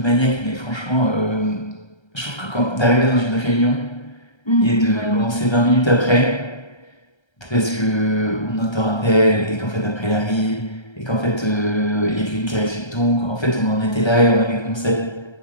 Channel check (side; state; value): right; late; 1.3 ms